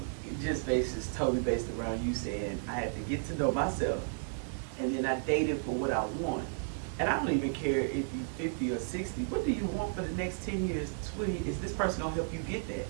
just is totally based around you saying, "I had to get to know myself, and then I dated for what I want." And I don't even care if you're 50 or 60. What do you want for the next 10 years, 20? Is this person gonna help you get that,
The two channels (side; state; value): left; silent; digital silence